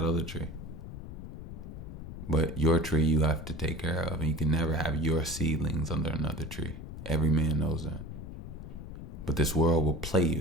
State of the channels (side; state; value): left; noise; rumble, 10 dB below the sound